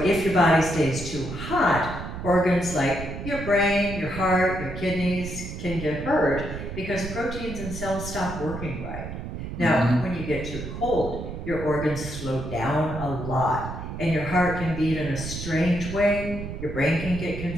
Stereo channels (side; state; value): right; noise; rumble, 8 dB below the sound